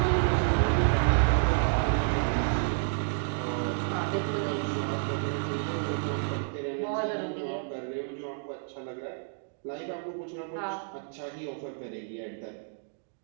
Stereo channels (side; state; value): left; silent; digital silence